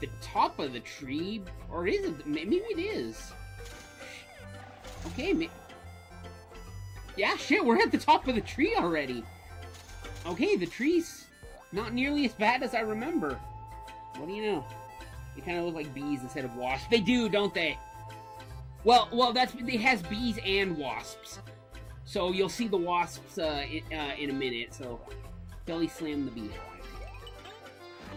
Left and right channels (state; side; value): identical; both; correlation 1.00